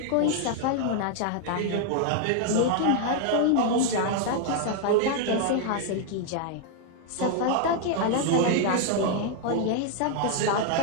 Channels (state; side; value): different; both; correlation 0.00